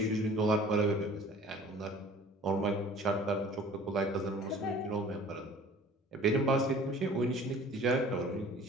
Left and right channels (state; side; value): normal; both; correlation 0.48